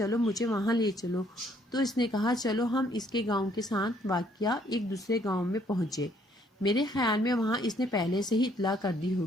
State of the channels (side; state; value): both; normal; correlation 0.65